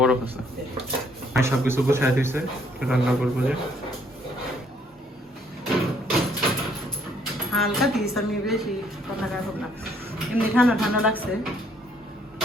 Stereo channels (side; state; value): both; normal; correlation 0.66